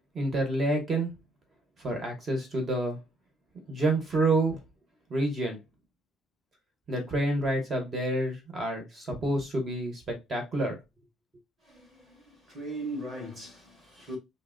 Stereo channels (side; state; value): both; normal; correlation 0.68